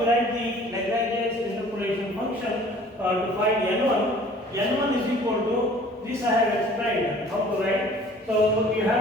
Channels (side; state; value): both; normal; correlation 0.50